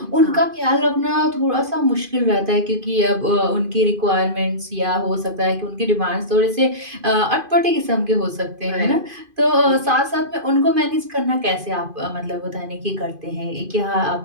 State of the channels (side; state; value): left; late; 2.5 ms